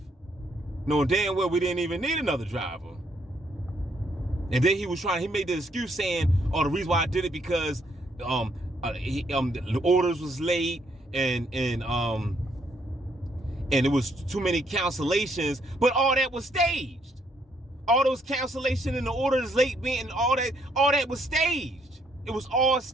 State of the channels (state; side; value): normal; both; correlation 0.71